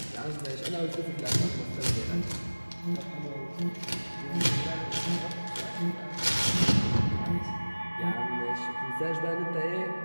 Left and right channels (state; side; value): inverted; both; correlation -1.00